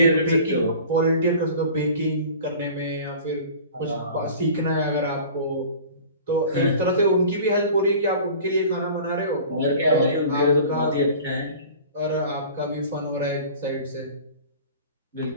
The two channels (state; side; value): inverted; both; correlation -0.42